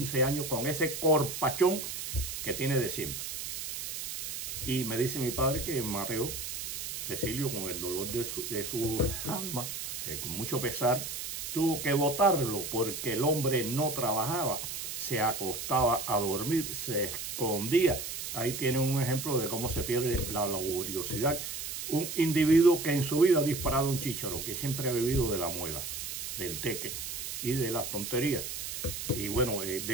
años con ese corpachón que tiene de siempre. Y me dice mi padre que Mateo, Cecilio, con el dolor de su alma, con mucho pesar, tuvo que botarlo porque el hombre no trabajaba, se acostaba a dormir, se escondía. Ahí tienen un ejemplo de cómo se pierde la laboriosidad. Un individuo que en su vida ha disparado un chícharo, que siempre ha vivido de la muela, del teque y de las tonterías. Y bueno,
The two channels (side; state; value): right; noise; hiss, 6 dB below the sound